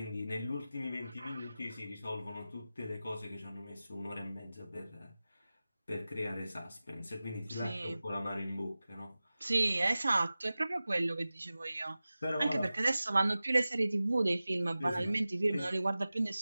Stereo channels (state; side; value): inverted; both; correlation -0.96